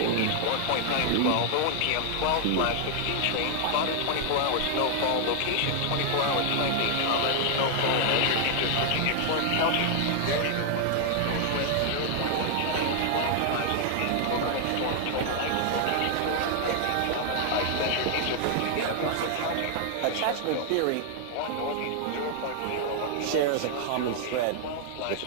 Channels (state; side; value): different; both; correlation 0.00